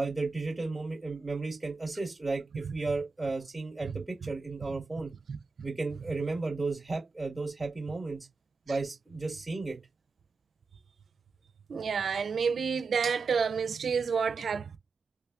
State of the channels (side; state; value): left; quieter; 4.3 dB